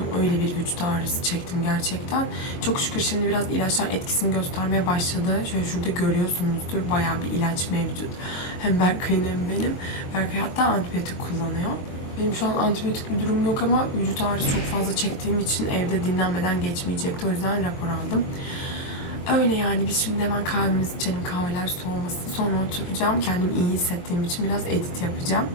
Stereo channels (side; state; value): right; late; 22 ms